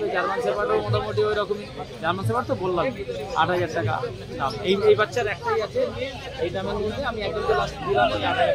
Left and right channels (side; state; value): both; identical; correlation 1.00